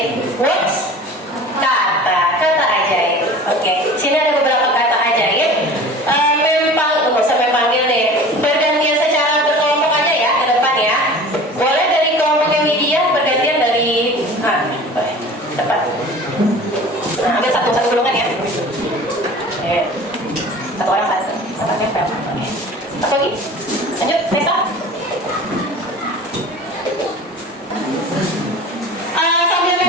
Words? Kata ajaib. Oke. Sini ada beberapa kata ajaib. Nggak usah panggil deh. Bergantian secara berkelompok aja ya ke depan ya. Boleh dari kelompoknya Widya bergantian dari boleh. Cepat. Nah, ambil satu golongan ya. Satu orang satu. Satu nempel. Oke. Satu lagi. Lanjut, Nesa. Sambil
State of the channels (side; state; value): both; normal; correlation 0.40